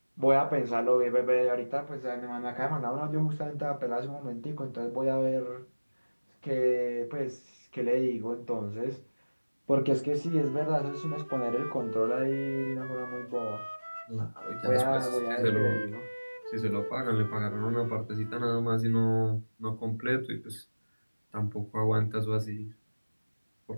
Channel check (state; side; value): inverted; both; correlation -1.00